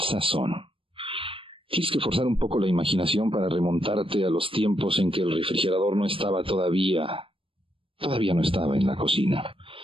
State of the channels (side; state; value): left; late; 0.26 ms